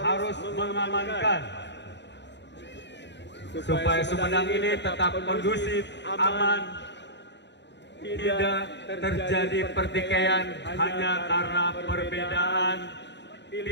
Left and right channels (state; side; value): late; right; 0.51 ms